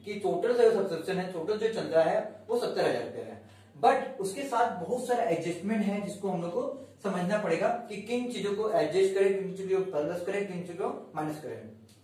कि टोटल जो सब्सक्रिप्शन है, टोटल जो चल रहा है वो 70,000 रुपया है. बट उसके साथ बहुत सारा एडजस्टमेंट है जिसको हम लोग को समझना पड़ेगा कि किन चीजों को एडजस्ट करें, किन चीजों को प्लस करें, किन चीजों को माइनस करें.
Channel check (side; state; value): both; identical; correlation 1.00